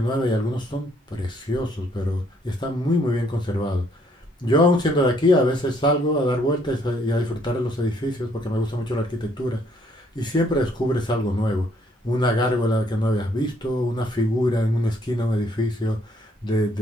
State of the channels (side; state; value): both; normal; correlation 0.66